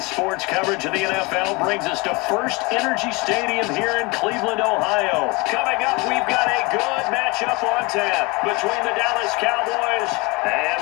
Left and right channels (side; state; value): right; quieter; 25.8 dB